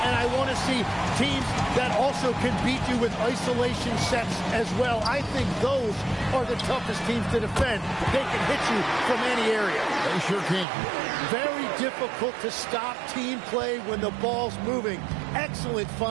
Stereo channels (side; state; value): left; drops out; at 10.7 s